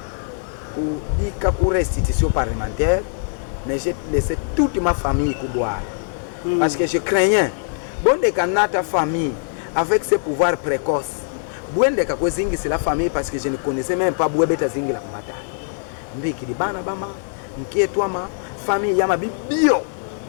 ou bika pour restitution parlementaire, mais j'ai laissé toute ma famille boire parce que je craignais bon de ta famille avec ses pouvoirs précoces. Bon de kakozingi c'est la famille parce que je ne connaissais même pas Bouébeta zingi la kumata. Mbiki di bana bama, mkietwa ma famille yama bio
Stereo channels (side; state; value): right; silent; 58 dB below the other